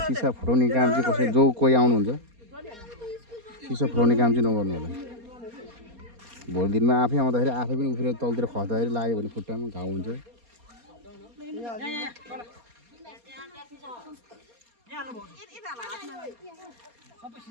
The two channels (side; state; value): left; late; 4.2 ms